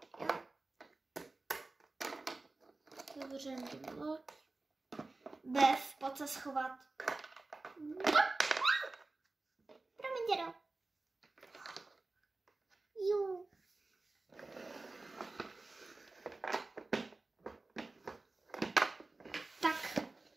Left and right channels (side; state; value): left; quieter; 3.3 dB